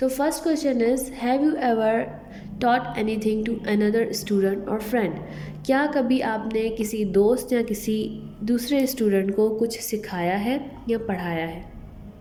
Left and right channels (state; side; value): identical; both; correlation 1.00